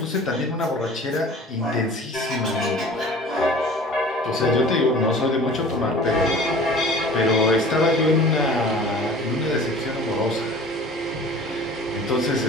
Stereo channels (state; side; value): normal; both; correlation 0.44